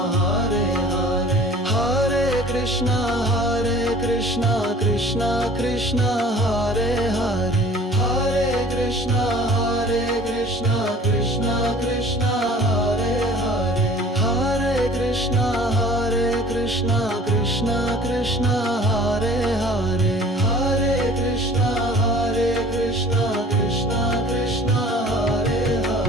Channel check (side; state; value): both; normal; correlation 0.49